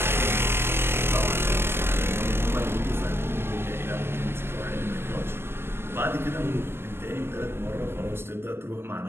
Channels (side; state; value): left; late; 0.12 ms